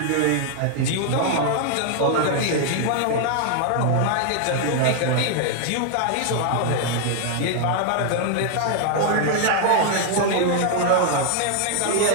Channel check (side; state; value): both; different; correlation 0.00